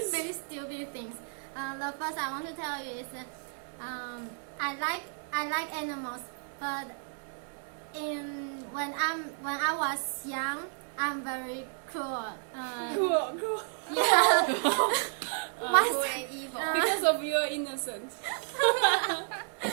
very stupid things. The first I want to tell you is I like animals, but when I was young, I'm very cruel. Cool. Yeah. Cruel and evil. Because of your innocence.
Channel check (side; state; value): left; silent; 56 dB below the other